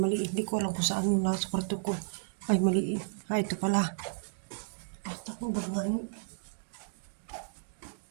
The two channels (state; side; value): silent; left; digital silence